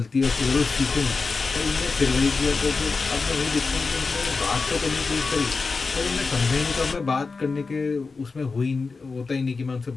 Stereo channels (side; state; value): right; quieter; 4.3 dB